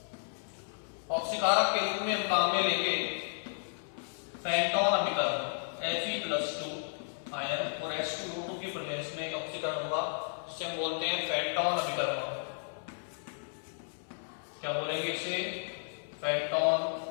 ऑक्सीकारक के रूप में हम काम में लेंगे फेंटोन अभिकरण Fe+2 आयन और H2O2 की प्रेजेंस में ऑक्सीकरण होगा, जिसे हम बोलते हैं फेंटोन अभिकरण। क्या बोलेंगे इसे, फेंटोन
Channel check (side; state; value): right; silent; 56 dB below the other